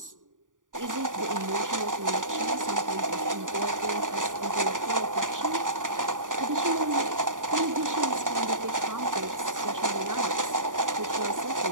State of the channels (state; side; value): late; left; 0.88 ms